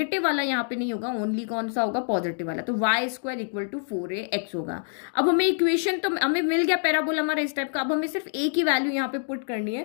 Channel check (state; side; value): silent; right; digital silence